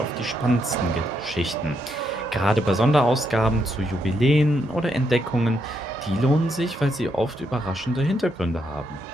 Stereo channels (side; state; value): both; normal; correlation 0.78